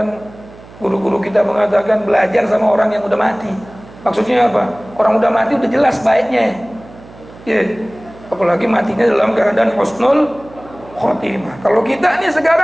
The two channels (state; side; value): noise; right; hum, 21 dB below the sound